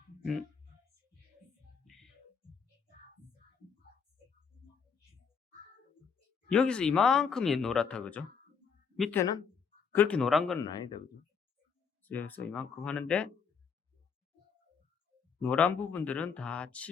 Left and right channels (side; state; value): right; quieter; 6.2 dB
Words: 여기서 이만큼이 노랗다 그죠? 밑에는 그렇게 노란 건 아니다 그죠? 그래서 이만큼 하는데 노란 부분들은 다